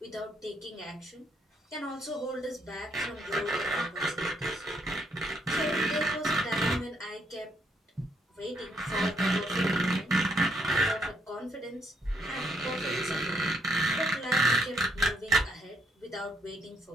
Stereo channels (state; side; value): normal; both; correlation 0.72